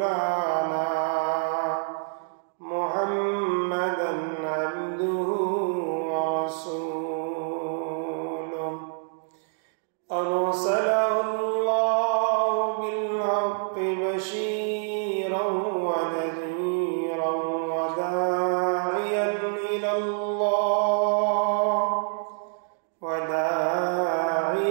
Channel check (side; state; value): left; silent; digital silence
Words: محمدا عبده ورسوله أرسله الله بالحق بشيرا ونذيرا وداعيا